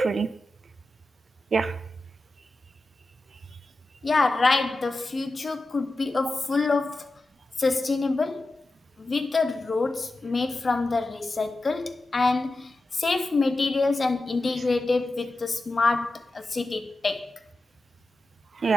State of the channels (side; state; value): both; normal; correlation 0.93